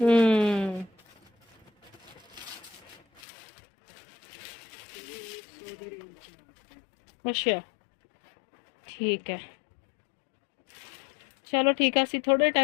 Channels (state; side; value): drops out; right; at 3.2 s